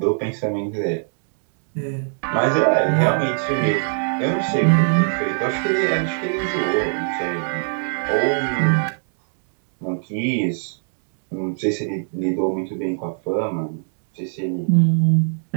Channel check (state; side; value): silent; left; digital silence